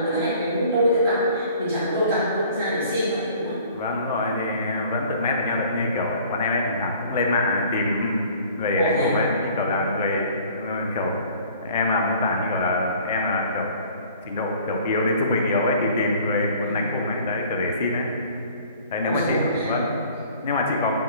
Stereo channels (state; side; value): inverted; both; correlation -0.51